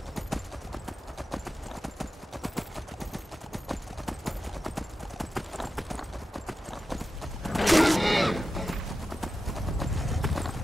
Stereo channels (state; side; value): normal; both; correlation 0.92